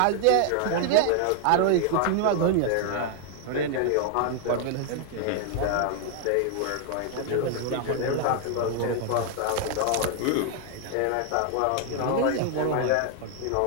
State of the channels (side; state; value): both; different; correlation 0.00